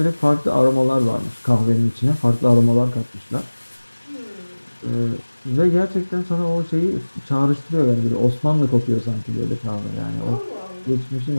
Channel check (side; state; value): both; inverted; correlation -1.00